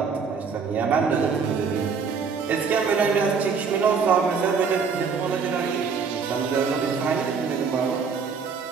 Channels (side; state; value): left; quieter; 5.6 dB